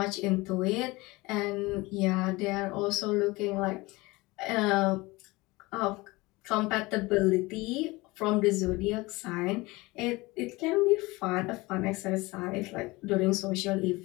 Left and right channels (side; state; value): right; quieter; 22.2 dB